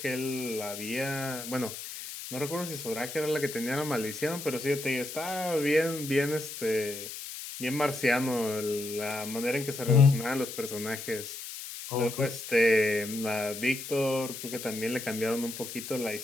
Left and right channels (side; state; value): left; noise; hiss, 9 dB below the sound